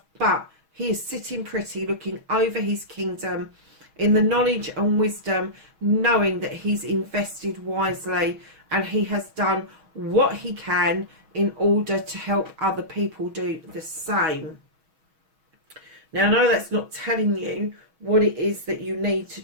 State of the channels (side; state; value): left; late; 6.3 ms